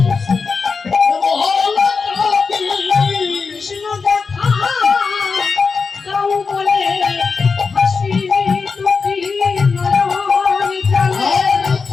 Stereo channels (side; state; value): right; quieter; 4.9 dB